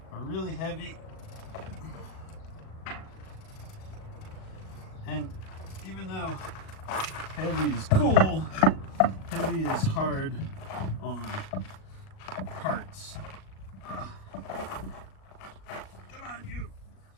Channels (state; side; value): late; right; 37 ms